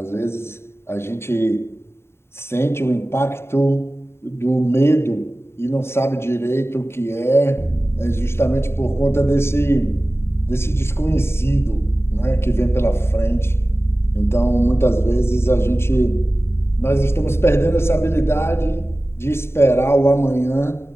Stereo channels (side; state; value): right; late; 0.12 ms